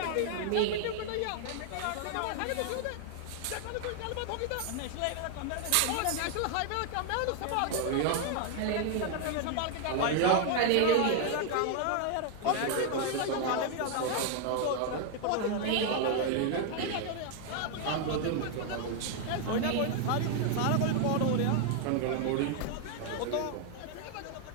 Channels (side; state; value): both; different; correlation 0.00